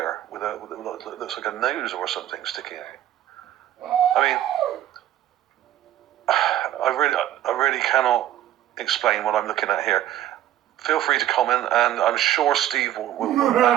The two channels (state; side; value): quieter; left; 12.6 dB